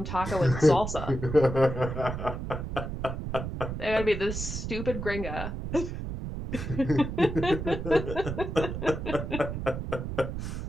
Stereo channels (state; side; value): noise; right; rumble, 5 dB below the sound